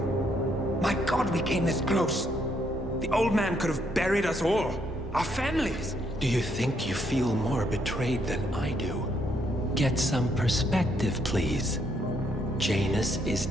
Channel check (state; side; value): normal; both; correlation 0.73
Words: My God, we came this close. The old man could have buried us all. Our families. Do you think you feel more betrayed than I do? Get some perspective, please. Janus is